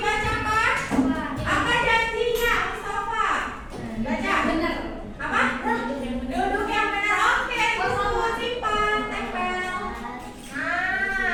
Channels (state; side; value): identical; both; correlation 1.00